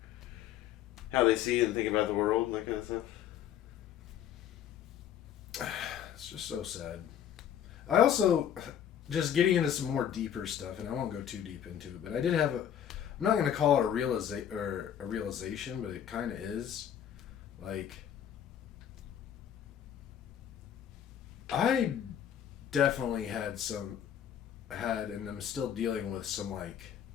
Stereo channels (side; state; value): right; quieter; 9.7 dB